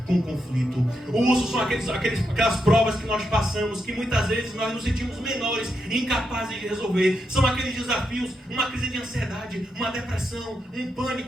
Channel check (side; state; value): both; normal; correlation 0.83